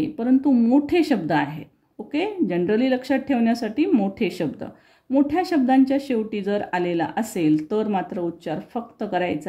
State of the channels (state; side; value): identical; both; correlation 1.00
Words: परंतु मोठे शब्द आहेत. ओके, जनरली लक्षात ठेवण्यासाठी मोठे शब्द. मोठ्या शब्दांच्या शेवटी जर आलेला असेल तर मात्र उच्चार फक्त